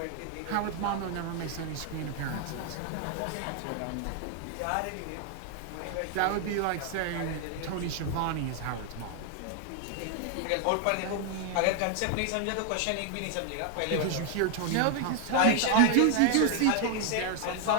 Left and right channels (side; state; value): both; different; correlation 0.00